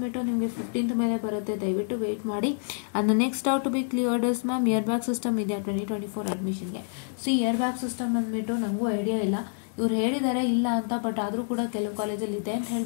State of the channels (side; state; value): right; silent; digital silence